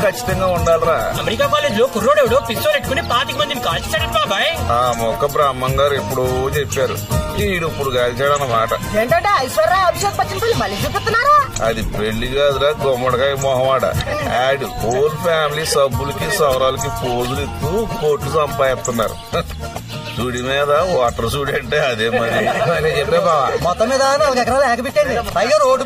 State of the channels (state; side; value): identical; both; correlation 1.00